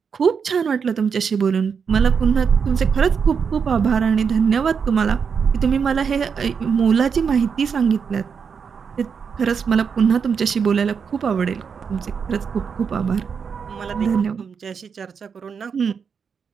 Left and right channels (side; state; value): left; quieter; 6.3 dB